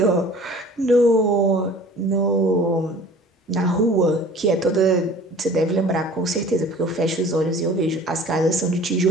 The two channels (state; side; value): normal; both; correlation 0.47